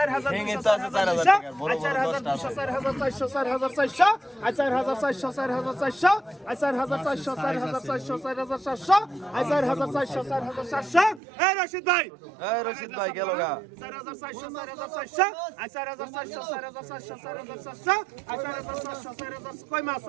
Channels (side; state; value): left; drops out; at 11.2 s